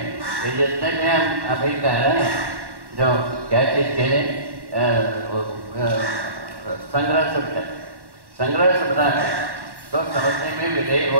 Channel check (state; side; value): late; left; 1.1 ms